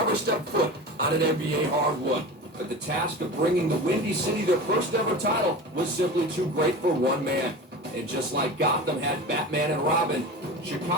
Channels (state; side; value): normal; both; correlation 0.31